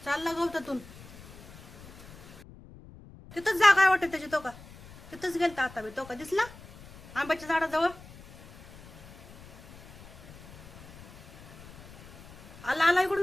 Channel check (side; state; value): left; noise; rumble, 19 dB below the sound